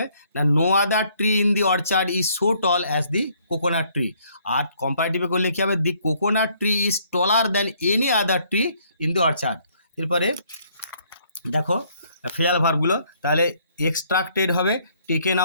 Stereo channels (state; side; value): inverted; both; correlation -0.65